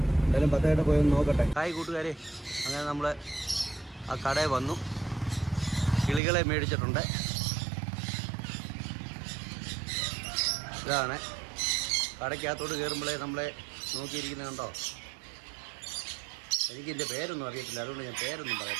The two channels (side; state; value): left; drops out; at 6.2 s